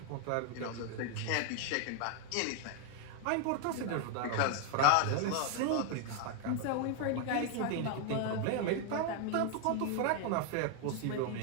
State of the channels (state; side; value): different; both; correlation 0.01